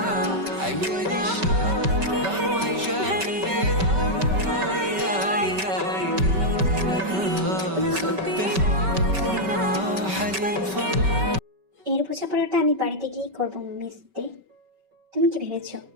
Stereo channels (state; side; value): late; left; 5.2 ms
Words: عياني الشوق روح جاب قلبي এর বোঝাপড়াটা আমি বাড়িতে গিয়ে করবো মিস দে। তুমি কি ভেবেছো